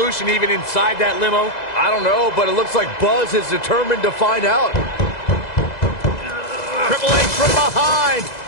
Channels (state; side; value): late; right; 2.0 ms